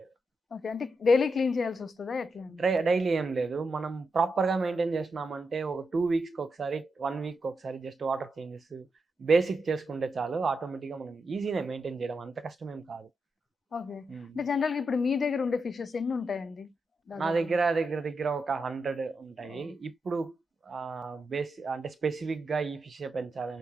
ఓకే. అంటే డైలీ క్లీన్ చేయాల్సొస్తదా ఎట్లా అండి? డైలీ ఏం లేదు. మనం ప్రాపర్‌గా మెయింటైన్ చేస్తున్నామంటే ఒక 2 వీక్స్‌కొకసారి, 1 వీక్‌కొకసారి జస్ట్ వాటర్ చేంజెస్ బేసిక్ చేసుకుంటే చాలు. ఆటోమేటిక్‌గా మనం ఈజీనే మెయింటైన్ చేయడం. అంత కష్టమేం కాదు. ఓకే. హ్మ్. అంటే జనరల్‌గా ఇప్పుడు మీ దగ్గర ఉండే ఫిషెస్ ఎన్నుంటాయండి నా దాదాపుగా? దగ్గర ఒక 100 ఉంటాయి. ఓహ్! ఇప్పుడు అంటే స్పెసిఫిక్‌గా ఈ ఫిషే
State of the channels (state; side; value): normal; both; correlation 0.86